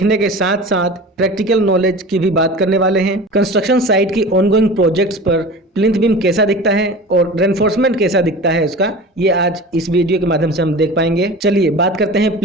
के साथ साथ प्रैक्टिकल नॉलेज की भी बात करने वाले हैं। कंस्ट्रक्शन साइट की ऑनगोइंग प्रोजेक्ट्स पर प्लिंथ बीम कैसा दिखता है और रेनफोर्समेंट कैसा दिखता है उसका, ये आज इस वीडियो के माध्यम से हम देख पाएंगे। चलिए बात करते हैं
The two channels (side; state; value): both; normal; correlation 0.35